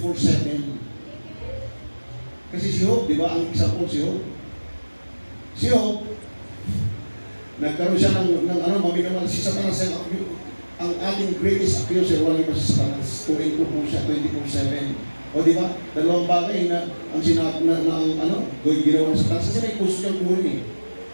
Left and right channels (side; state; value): both; inverted; correlation -1.00